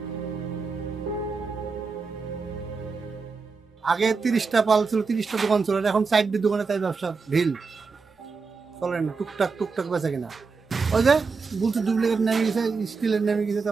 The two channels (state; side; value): quieter; left; 4.7 dB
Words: আগে 30টা পাল ছিল, 30টা দোকান ছিল, এখন 4টি দোকানে তাই ব্যবসা ঢিল চলে না, টুকটাক টুকটাক বেচা কিনা। ওই যে বলছে ডুপ্লিকেট নেমে গেছে, স্টিলের নেমে গেছে,